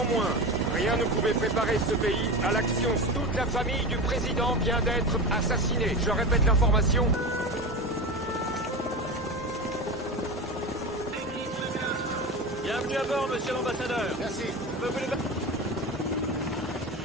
rien ne pouvait préparer ce pays à l'action. Toute la famille du président vient d'être assassinée. Je répète l'information. Bienvenue à bord, monsieur l'ambassadeur. Merci.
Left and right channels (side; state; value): both; normal; correlation 0.24